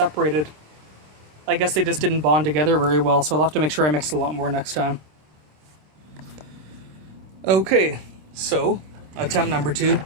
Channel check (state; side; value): late; left; 26 ms